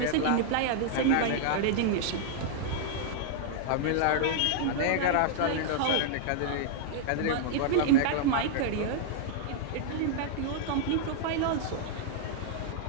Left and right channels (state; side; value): different; both; correlation -0.01